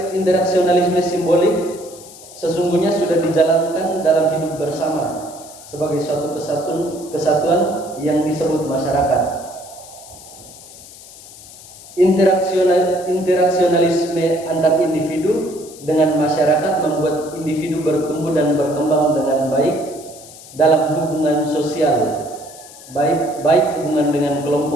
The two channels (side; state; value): left; noise; hiss, 18 dB below the sound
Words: Interaksionalisme simbolik sesungguhnya sudah dijalankan dalam hidup bersama sebagai suatu kesatuan yang disebut masyarakat. Interaksionalisme antar individu dengan masyarakat membuat individu bertumbuh dan berkembang dengan baik dalam hubungan sosial, baik hubungan dengan